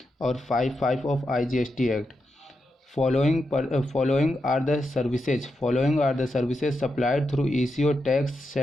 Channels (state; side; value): normal; both; correlation 0.86